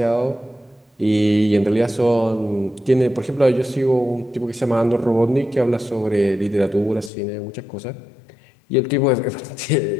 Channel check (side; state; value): right; drops out; at 7.1 s